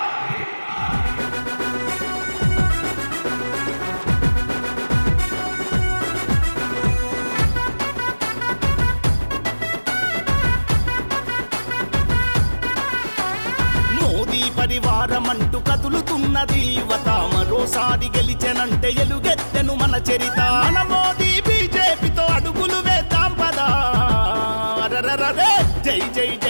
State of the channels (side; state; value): both; inverted; correlation -1.00